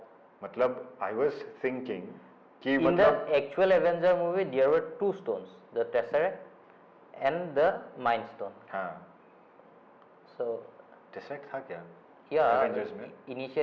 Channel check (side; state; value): both; identical; correlation 1.00